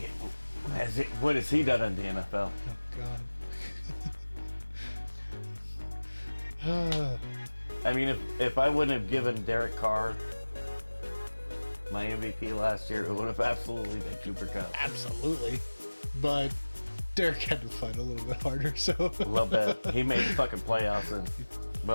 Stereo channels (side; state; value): both; inverted; correlation -1.00